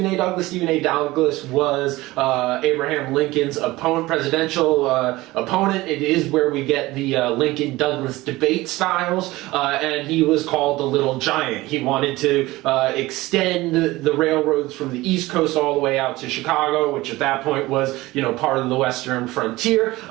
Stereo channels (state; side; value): quieter; left; 19.1 dB